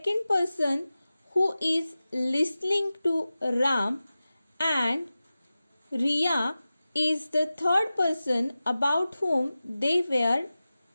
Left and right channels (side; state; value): both; inverted; correlation -0.95